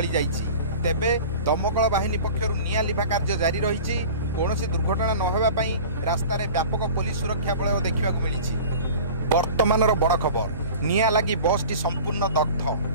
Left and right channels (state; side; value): inverted; both; correlation -0.39